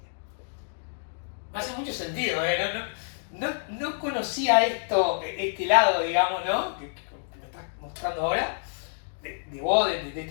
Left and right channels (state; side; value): silent; right; digital silence